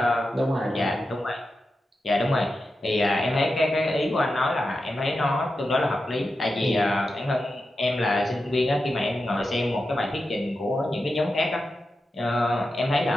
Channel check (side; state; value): both; normal; correlation 0.90